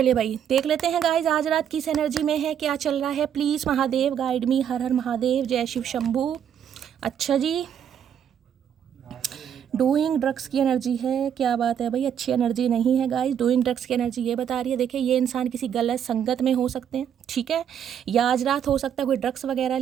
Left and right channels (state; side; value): quieter; left; 8.9 dB